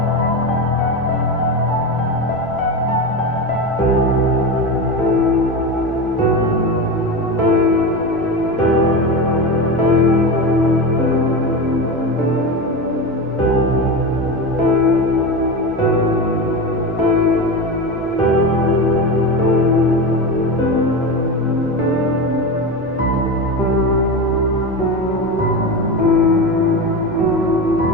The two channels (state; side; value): noise; left; hum, 27 dB below the sound